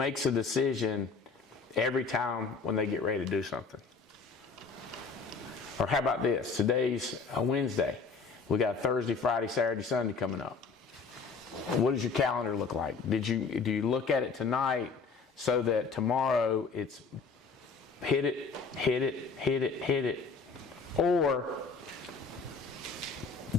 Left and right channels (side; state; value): right; quieter; 4.8 dB